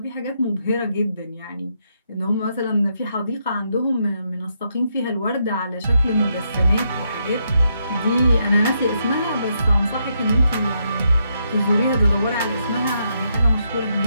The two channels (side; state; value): both; inverted; correlation -0.78